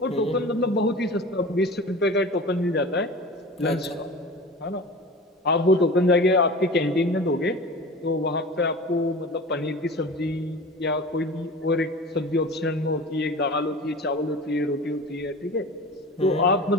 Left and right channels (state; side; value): normal; both; correlation 0.35